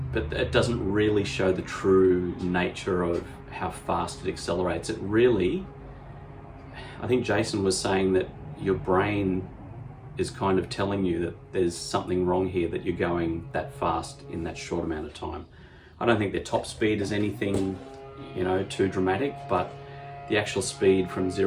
but it doesn't really show the true nature of how fast it accelerates. It really, I think Jason was saying that your brain is kind of telling you that there's something wrong here, that you're going that fast in that short amount of time. I don't think their top speed is anything, too dramatic, but the actual speed from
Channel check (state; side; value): identical; both; correlation 1.00